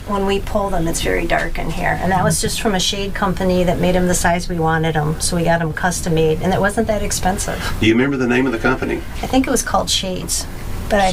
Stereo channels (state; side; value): identical; both; correlation 1.00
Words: when we pull them, it's very dark in here. And that was just from a shade company that made them the size we wanted them. So we got them custom made, and it wasn't that expensive. Do you remember the name of the company? I think it was called Shades. But